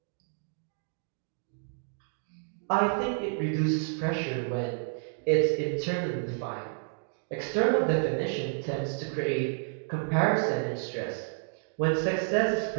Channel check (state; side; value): silent; left; digital silence